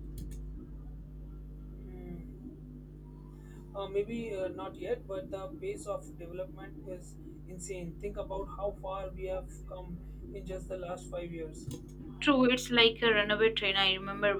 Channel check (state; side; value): identical; both; correlation 1.00